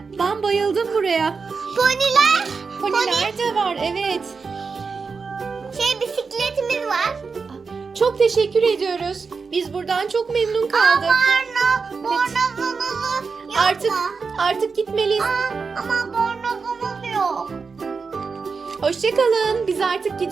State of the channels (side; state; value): left; quieter; 5.0 dB